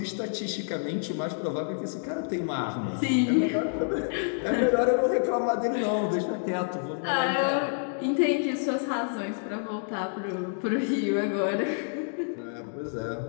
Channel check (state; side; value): silent; right; digital silence